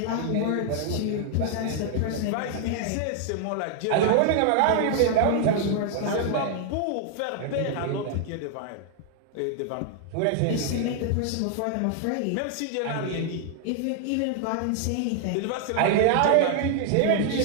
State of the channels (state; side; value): different; both; correlation 0.00